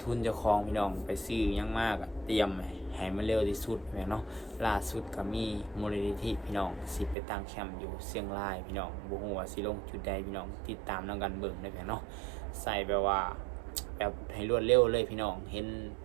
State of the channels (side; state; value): left; drops out; at 7.2 s